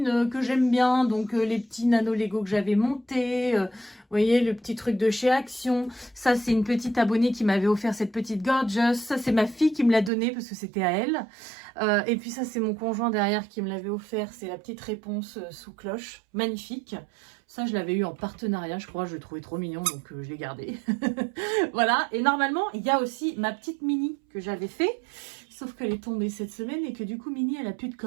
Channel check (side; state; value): left; drops out; at 10.1 s